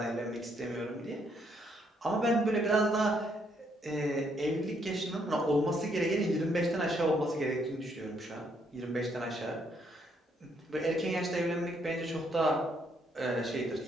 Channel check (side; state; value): both; normal; correlation 0.72